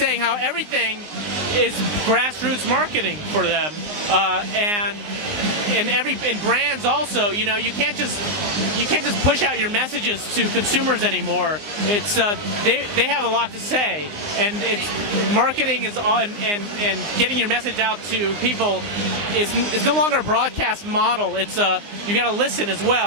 how everything is grassroots marketing for them, and brands also. You can't just push out your messages to consumers anymore. It's they have a lot to say, and it's marketing is on, and getting your message out to people is no longer a broadcast model. It's you got to listen as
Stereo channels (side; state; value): left; late; 19 ms